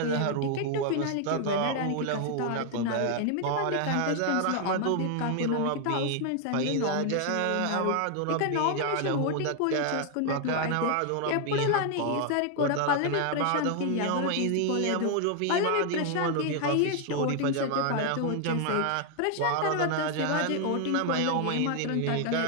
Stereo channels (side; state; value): both; different; correlation 0.00